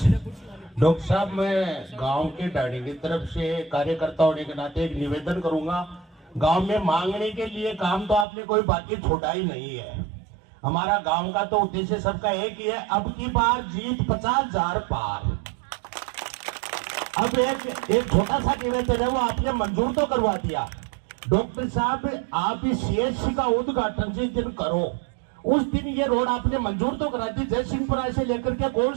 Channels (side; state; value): left; drops out; at 8.2 s